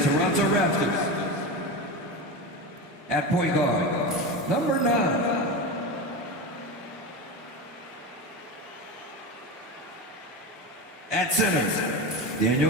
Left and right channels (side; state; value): both; normal; correlation 0.22